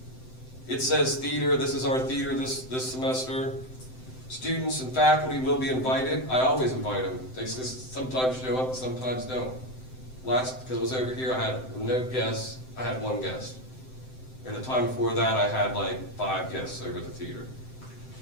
It says theater, this is our theater this semester. Students and faculty will be invited. I always invite them. They sometimes show up, sometimes don't. Last, because I was over here, I had no guests, I had 1 guest. And the time before that, I had like 5 guests over at the theater.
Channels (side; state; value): right; late; 7.8 ms